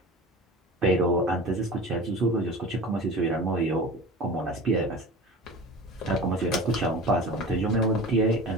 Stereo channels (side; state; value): both; normal; correlation 0.36